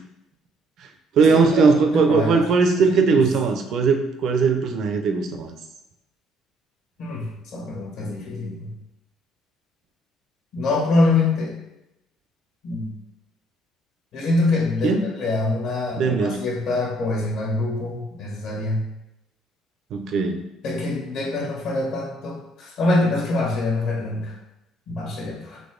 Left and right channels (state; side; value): normal; both; correlation 0.66